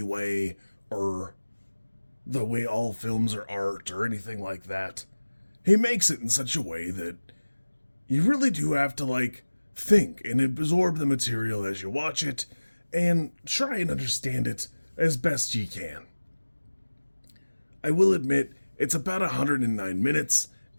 way or the way all films are art or anything like that. He makes it in such a way that you really do have to think and absorb the material as you watch it and try and understand it as best you can. I will admit, it's about 109 minutes,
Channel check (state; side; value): inverted; both; correlation -1.00